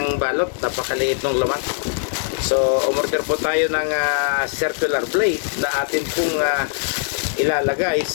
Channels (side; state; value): right; silent; 60 dB below the other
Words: balot, napakaliit ng laman. So umorder po tayo ng circular blade na atin pong ilalagay